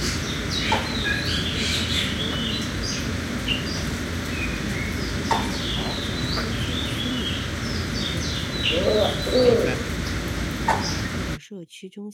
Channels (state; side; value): identical; both; correlation 1.00